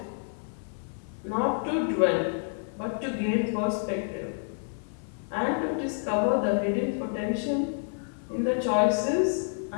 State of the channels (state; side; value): silent; right; digital silence